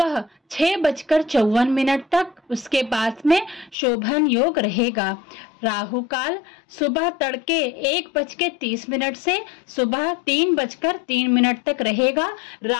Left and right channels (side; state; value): right; drops out; at 3.8 s